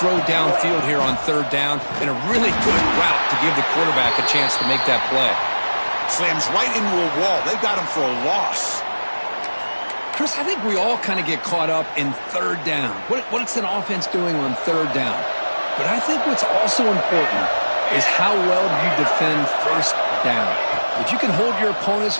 downfield here on third down and a really good route to give the quarterback a chance to make that play. Slams right into a wall. They got him for a loss. Chris, I think we all kind of get caught up in third down. What's an offense doing on third down? But I think what's also important is how well you defend first down. If you can hold your opponents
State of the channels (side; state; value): both; inverted; correlation -1.00